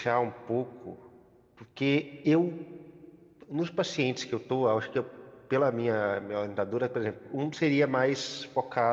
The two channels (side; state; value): both; identical; correlation 1.00